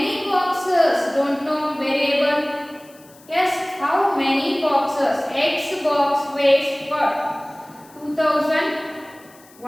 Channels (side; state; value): left; noise; hiss, 26 dB below the sound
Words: boxes? Don't know variable. Yes, how many boxes? X box weighs what?